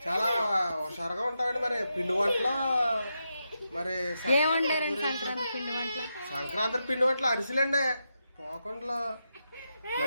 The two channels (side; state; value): both; inverted; correlation -0.86